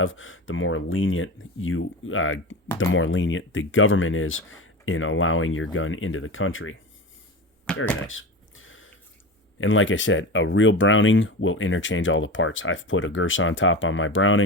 the more lenient the government is in allowing your gun into the country. Very nice. And like I said, a real Browning will interchange all the parts. I've put a Girsan top on my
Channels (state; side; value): normal; both; correlation 0.27